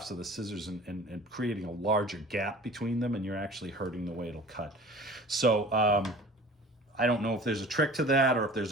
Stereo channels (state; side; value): normal; both; correlation 0.43